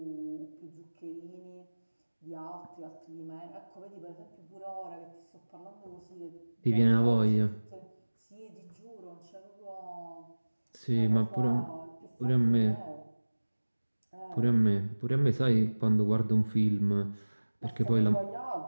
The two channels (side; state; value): both; inverted; correlation -1.00